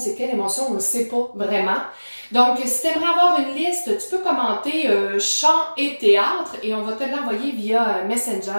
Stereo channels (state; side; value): inverted; both; correlation -1.00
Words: quelle émotion? » On ne sait pas vraiment. Donc, si tu aimerais avoir une liste, tu peux commenter chant et théâtre et on va te l'envoyer via Messenger